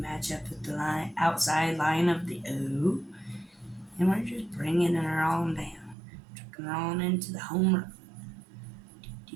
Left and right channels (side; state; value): left; drops out; at 6.0 s